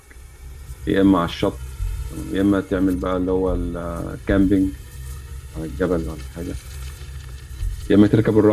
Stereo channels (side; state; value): both; identical; correlation 1.00